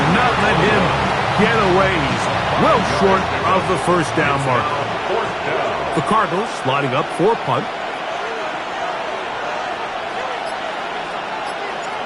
not let him get away. He's well short of the first down mark. The Cardinals lining up for a punt.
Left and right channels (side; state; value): both; identical; correlation 1.00